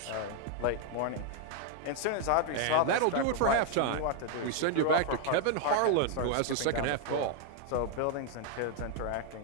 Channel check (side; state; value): both; different; correlation 0.01